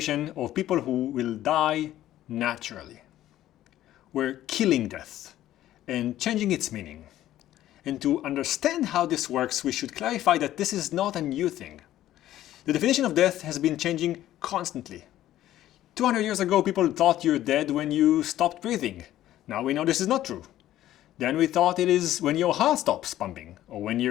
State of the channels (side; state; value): right; quieter; 13.4 dB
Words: of people who will die naturally. We're killing death and changing its meaning. And to understand how this works, we should clarify that this is not a new thing. The definition of death has been changing constantly. 200 years ago, people thought you're dead when you stopped breathing. Now we know this is not true. Then we thought it is when your heart stops pumping, or when